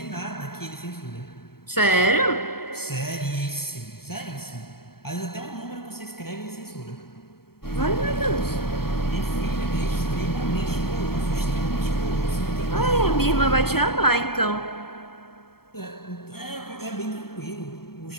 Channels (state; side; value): late; right; 0.95 ms